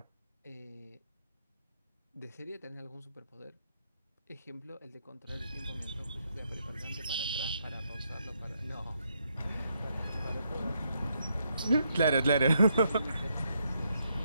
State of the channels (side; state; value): both; inverted; correlation -0.77